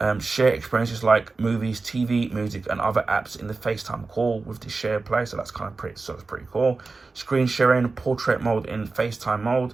Share experiences like movies, TV, music, and other apps in the FaceTime call with the shared play. So that's that's pretty cool. Screen sharing, portrait mode in FaceTime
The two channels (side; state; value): left; quieter; 3.9 dB